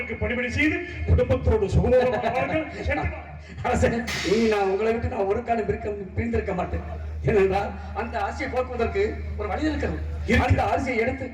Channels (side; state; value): both; identical; correlation 1.00